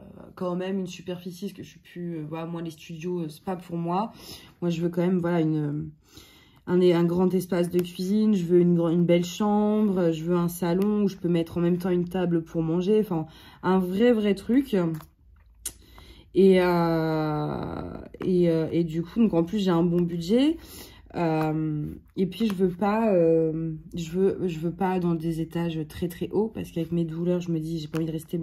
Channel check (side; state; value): both; identical; correlation 1.00